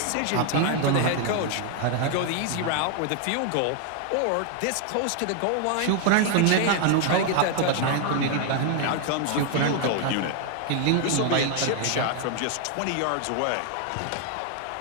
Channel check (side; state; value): both; different; correlation 0.00